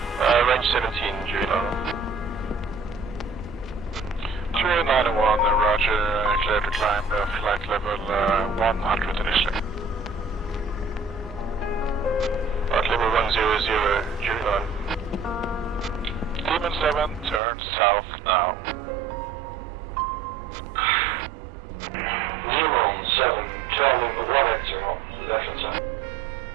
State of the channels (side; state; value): left; drops out; at 17.4 s